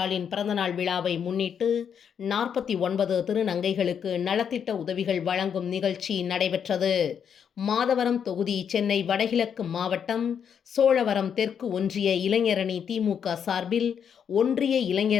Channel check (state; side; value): quieter; right; 7.7 dB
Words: பிறந்தநாள் விழாவை முன்னிட்டு 49 திருநங்கைகளுக்கு நலத்திட்ட உதவிகள் வழங்கும் நிகழ்ச்சி நடைபெற்றது. மாதவரம் தொகுதி சென்னை வடகிழக்கு மாவட்டம் சோழவரம் தெற்கு ஒன்றிய இளைஞரணி திமுக சார்பில் ஒன்றிய